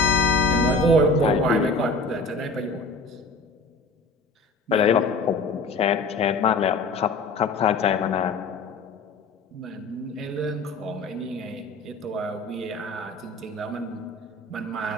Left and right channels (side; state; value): right; quieter; 3.2 dB